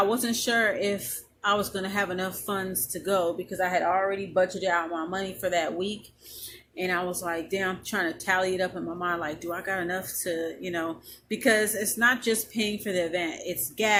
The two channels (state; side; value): identical; both; correlation 1.00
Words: wasn't sure if I was going to have enough funds to go because I had already budgeted out my money for that week. And I was like, damn, I'm trying to tally it up in my mind. Like, do I got enough to, because it's not just paying for the event. It's